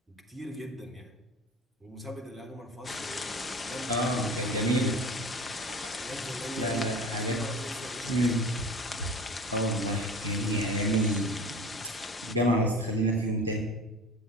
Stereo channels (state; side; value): normal; both; correlation 0.36